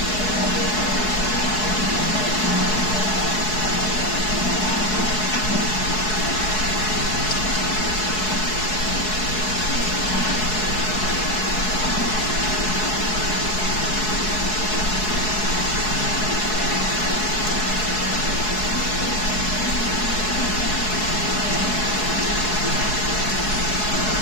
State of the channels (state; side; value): late; right; 4.7 ms